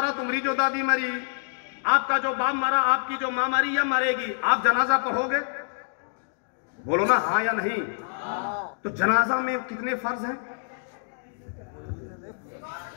तुम्हारी जो दादी मरी, आपका जो बाप मारा, आपकी जो मां मरी या मरेगी, आप जनाजा पढ़ोगे? बोलो ना हाँ या नहीं। तो जनाजा में कितने फर्ज हैं?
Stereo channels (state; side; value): silent; right; digital silence